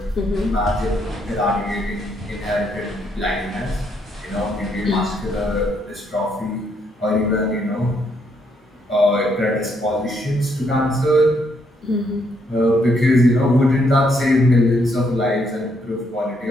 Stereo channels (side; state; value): both; normal; correlation 0.73